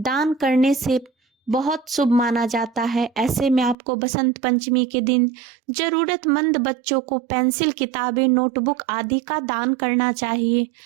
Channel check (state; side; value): drops out; left; at 3.8 s